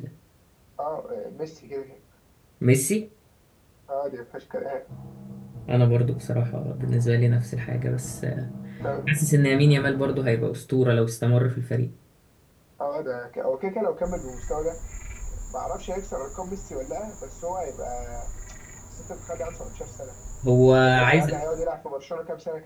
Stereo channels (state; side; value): identical; both; correlation 1.00